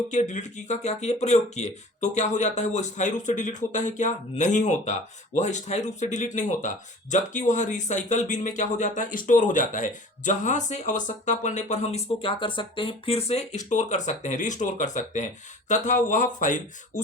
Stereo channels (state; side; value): normal; both; correlation 0.43